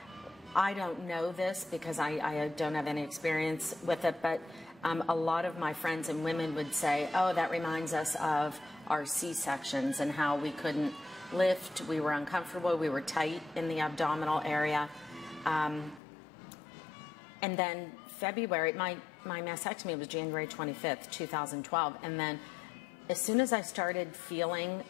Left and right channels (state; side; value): drops out; right; at 16.0 s